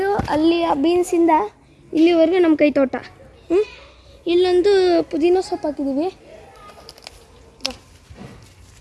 ಅಲ್ಲಿ ಆ ಬೀನ್ಸಿಂದ ಇಲ್ಲಿವರೆಗೂ ನಮ್ಮ ಕೈ ತೋಟ. ಇಲ್ಲೊಂದು ಪುದೀನ ಸೊಪ್ಪು ಹಾಕಿದ್ದೀವಿ.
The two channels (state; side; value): identical; both; correlation 1.00